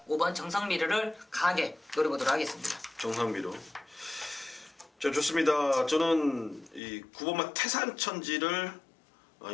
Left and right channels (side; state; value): right; drops out; at 6.8 s